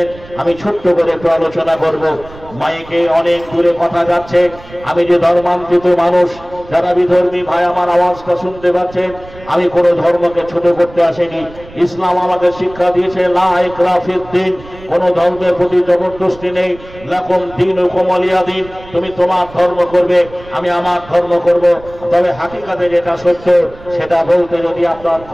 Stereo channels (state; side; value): noise; right; rumble, 20 dB below the sound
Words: আমি ছোট্ট করে একটু আলোচনা করব। মাইকে অনেক দূরে কথা যাচ্ছে, আমি যে ধর্মান্তরিত মানুষ, যারা বিধর্মী ভাই আমার আওয়াজটা শুনতে পাচ্ছেন, আমি কোনো ধর্মকে ছোট করতে আসিনি। ইসলাম আমাকে শিক্ষা দিয়েছে, লা ইকরাহা ফিদ্দীন, কোন ধর্মের প্রতি জবরদস্তি নেই। লাকুম দীনুকুম ওয়ালিয়া দীন, তুমি তোমার ধর্ম করবে, আমি আমার ধর্ম করব। তবে হাকিকাতে যেটা সত্য সেটা বলতে যদি আপনার